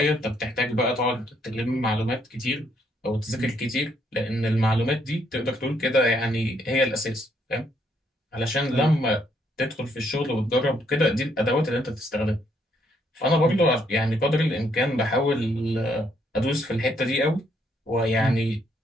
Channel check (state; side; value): normal; both; correlation 0.72